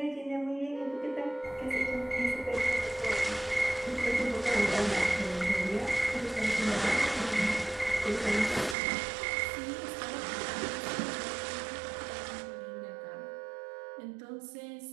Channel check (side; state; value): left; drops out; at 8.8 s